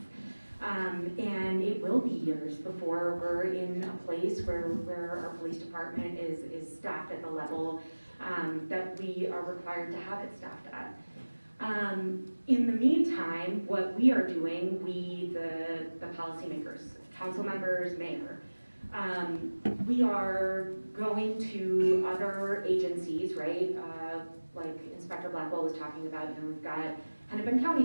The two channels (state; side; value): inverted; both; correlation -1.00